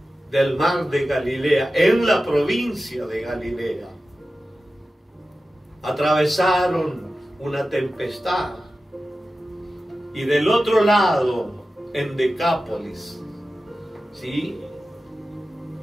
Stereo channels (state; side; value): normal; both; correlation 0.94